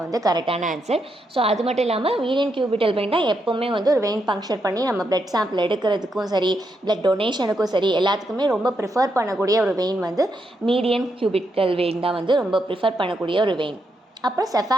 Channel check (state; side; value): normal; both; correlation 0.81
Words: வந்து கரெக்டான ஆன்சர். ஸோ அது மட்டும் இல்லாமல் மீடியன் கியூபிட்டல் வெயின் தான் எப்போவுமே வந்து ஒரு வெயின் பங்க்சர் பண்ணி நம்ம பிளட் சாம்பிள் எடுக்கிறதுக்கும் சரி பிளட் டொனேஷனுக்கும் சரி எல்லாத்துக்குமே ரொம்ப ப்ரிஃபர் பண்ணக்கூடிய ஒரு வெயின் வந்து மீடியன் கியூபிட்டல் வெயின் தான் வந்து ரொம்ப ப்ரிஃபர் பண்ணக்கூடிய ஒரு வெயின். அப்புறம்